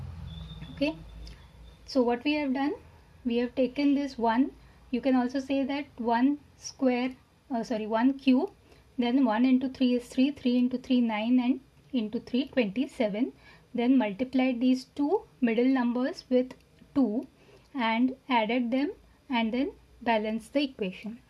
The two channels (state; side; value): identical; both; correlation 1.00